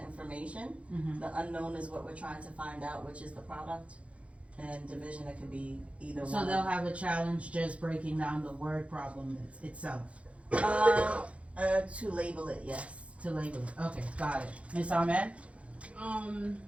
information. Mm-hmm. The unknown is what we're trying to find out, which is the product. And division, it could be either one. So they'll have a challenge just breaking down the word problem itself. To label it, yes. To label it. Okay, got it. Ms. Ahmed?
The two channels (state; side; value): late; left; 0.063 ms